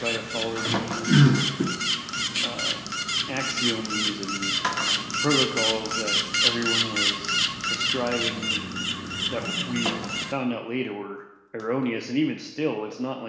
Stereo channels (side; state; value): both; identical; correlation 1.00